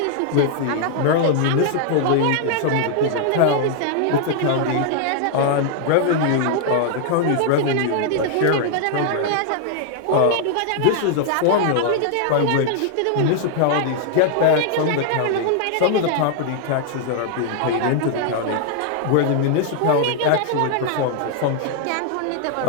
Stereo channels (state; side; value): different; both; correlation 0.00